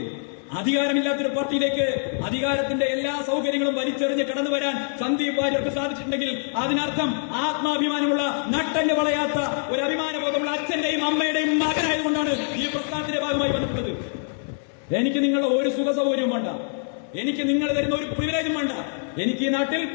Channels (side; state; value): right; silent; digital silence